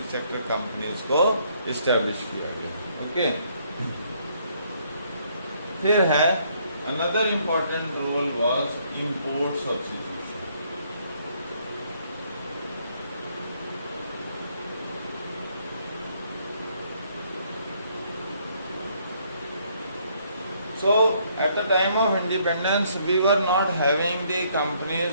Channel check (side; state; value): both; inverted; correlation -0.68